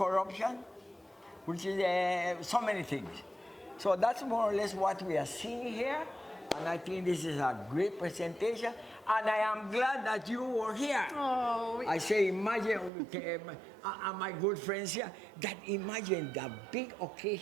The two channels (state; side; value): drops out; left; at 12.9 s